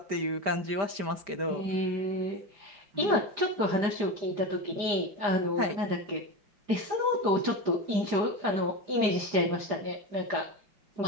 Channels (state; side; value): late; left; 4.9 ms